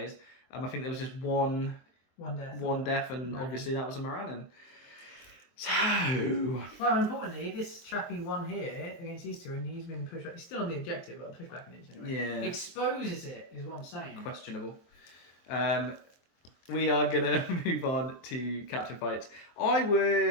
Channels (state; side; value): late; right; 23 ms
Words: I think there was just one death, and obviously that was a Morannon. So... Well, importantly, this chappy won here against these two, and he's been pushed back. He's still on the objective, but pushed back an inch anyway. Yeah. Exposes it, is what I'm saying. Questionable. We are going to move on to captain fights. I